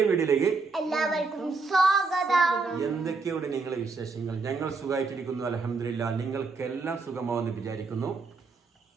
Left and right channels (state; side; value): quieter; left; 4.2 dB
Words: വീഡിയോയിലേക്ക് എല്ലാവർക്കും സ്വാഗതം. എന്തൊക്കെയാണ് നിങ്ങളെ വിശേഷങ്ങൾ? ഞങ്ങൾ സുഖമായിട്ടിരിക്കുന്നു, അൽഹംദുലില്ലാ. നിങ്ങൾക്കെല്ലാം സുഖമാവെന്ന് വിചാരിക്കുന്നു.